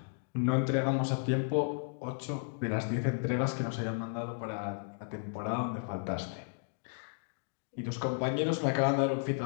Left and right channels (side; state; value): right; silent; digital silence